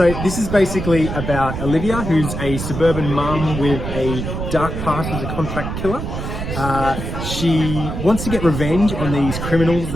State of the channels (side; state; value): right; noise; rumble, 5 dB below the sound